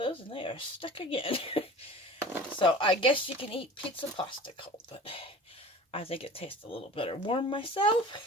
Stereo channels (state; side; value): normal; both; correlation 0.40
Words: and they are stuck again. So I guess you can eat pizza pasta cold, but I think it tastes a little better warm